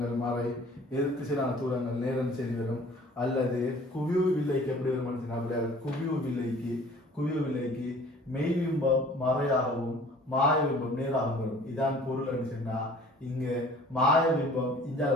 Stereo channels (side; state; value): both; normal; correlation 0.50